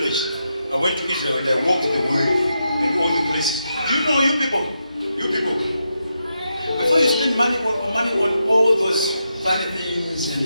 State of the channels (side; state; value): both; inverted; correlation -0.84